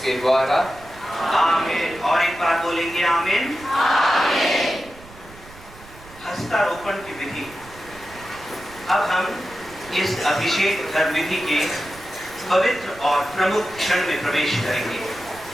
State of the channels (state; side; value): noise; right; rumble, 20 dB below the sound